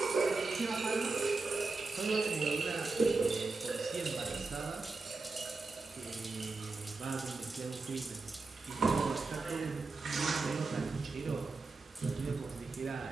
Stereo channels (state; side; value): quieter; left; 3.8 dB